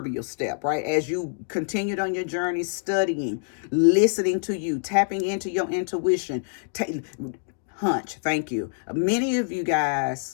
step, right? As you continued on your journey, studying, listening to you, tapping into your intuition, hunch, thank you. Many of you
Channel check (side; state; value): right; silent; digital silence